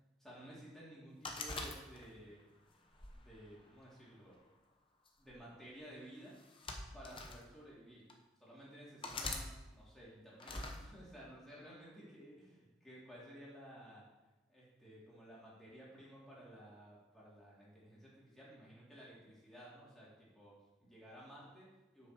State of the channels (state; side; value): normal; both; correlation 0.45